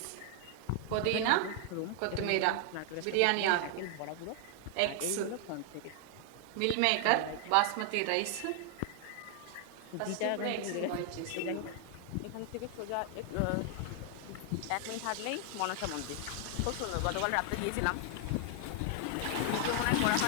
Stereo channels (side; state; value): both; different; correlation 0.00